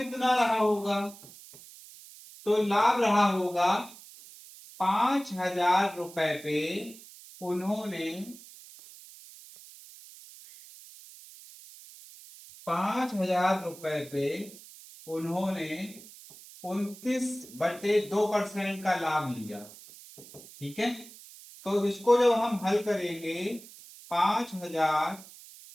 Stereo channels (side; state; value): right; noise; hiss, 19 dB below the sound